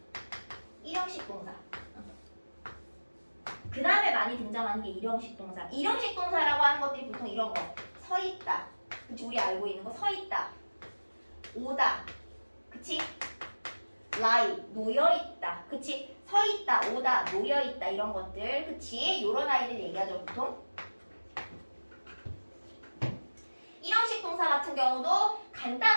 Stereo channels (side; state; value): both; inverted; correlation -1.00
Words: 일형식 동사, 그 다음에 많이 등장하는 게 일형식 동사. 일형식 동사라고 하는 것들이 보통 이런 거, 서 있다, 그치? 우리 알고 있는 거 서 있다, 오다, 그치? lie, 놓여 있다, 그치? 서 있다, 오다, 놓여 있다 이런 것들, 그치? 요런 아이들 얘기하죠 보통. 일형식 동사 같은 경우도